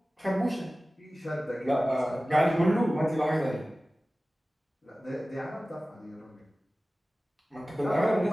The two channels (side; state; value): both; normal; correlation 0.97